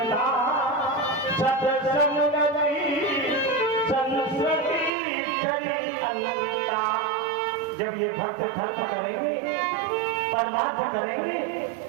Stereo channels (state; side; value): drops out; left; at 4.9 s